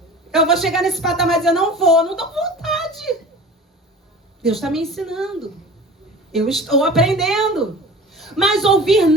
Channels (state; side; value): normal; both; correlation 0.39